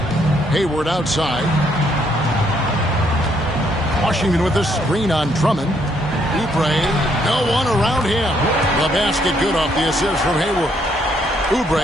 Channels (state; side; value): normal; both; correlation 0.71